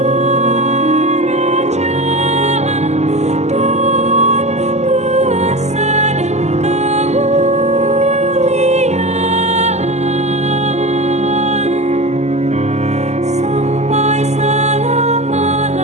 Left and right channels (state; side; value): late; left; 0.33 ms